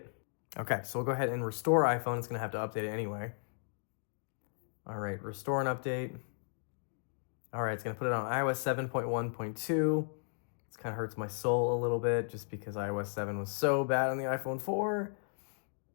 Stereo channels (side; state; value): right; silent; digital silence